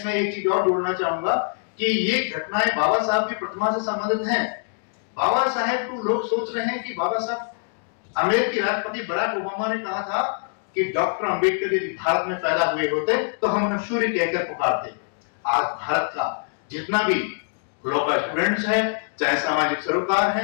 एक चीज और जोड़ना चाहूंगा कि ये घटनाएं बाबा साहब की प्रतिमा से संबंधित हैं। बाबा साहेब को लोग सोच रहे हैं कि बाबा साहब, अमेरिकी राष्ट्रपति बराक ओबामा ने कहा था कि डॉक्टर अंबेडकर यदि भारत में पैदा हुए होते तो हम उन्हें सूर्य कहकर पुकारते। आज भारत का जितना भी लॉ का स्टूडेंट्स है, चाहे सामाजिक सरोकार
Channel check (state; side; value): silent; right; digital silence